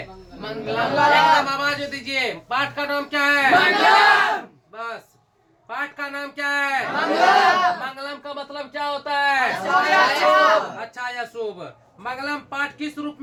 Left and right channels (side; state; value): both; identical; correlation 1.00